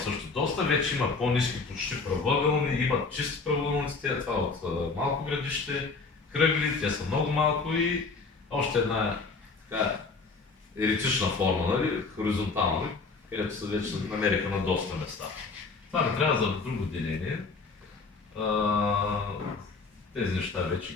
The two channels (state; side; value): quieter; right; 4.3 dB